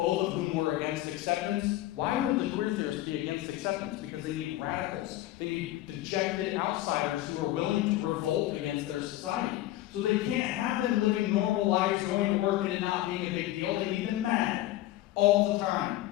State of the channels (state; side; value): quieter; right; 15.4 dB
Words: of whom were against acceptance. Why would the queer theorists be against acceptance? Because they need radicals. They need dejected outsiders who are willing to revolt against their society. So they can't have them living normal lives, going to work and it not being a big deal. They need them mad all the time.